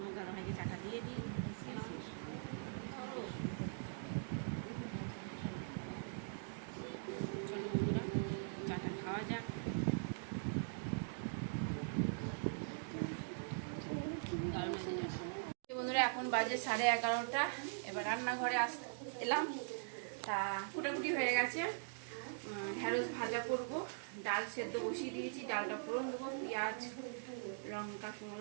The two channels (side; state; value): left; silent; digital silence